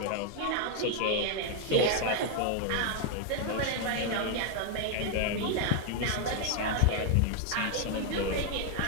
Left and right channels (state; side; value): different; both; correlation 0.00